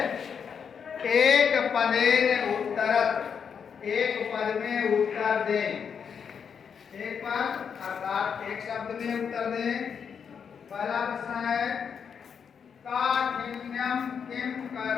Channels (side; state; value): right; quieter; 6.9 dB